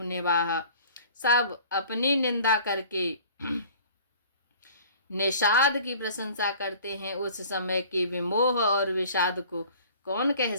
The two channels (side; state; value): both; inverted; correlation -0.48